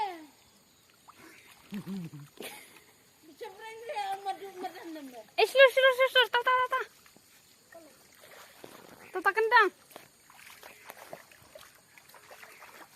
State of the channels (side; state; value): both; identical; correlation 1.00